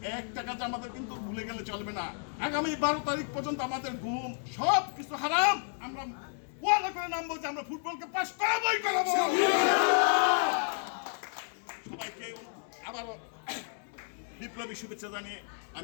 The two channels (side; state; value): right; silent; 57 dB below the other